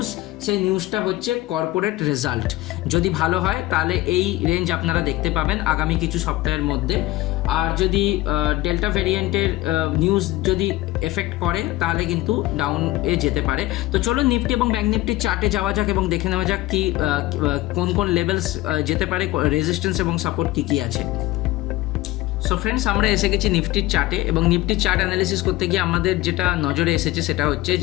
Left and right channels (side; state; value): right; quieter; 17.8 dB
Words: সেই নিউজটা হচ্ছে কর্পোরেট রেজাল্ট। যদি ভালো হয় তাহলে এই রেঞ্জ আপনারা দেখতে পাবেন আগামী কিছু সপ্তাহের মধ্যে। আর যদি ডেল্টা ভেরিয়েন্টের নিউজ যদি এফেক্ট করে তাহলে কিন্তু ডাউনে যেতে পারে। তো চলো নিফটি এবং ব্যাঙ্ক নিফটির চার্টে যাওয়া যাক এবং দেখে নেওয়া যাক কি কোন কোন লেভেলস যেতে পারে, রেজিস্ট্যান্স এবং সাপোর্ট কী কী আছে। সো ফ্রেন্ডস, আমরা এসে গেছি নিফটির চার্টে, এবং নিফটির চার্ট অ্যানালিসিস করতে গিয়ে আমাদের যেটা নজরে এসেছে সেটা হচ্ছে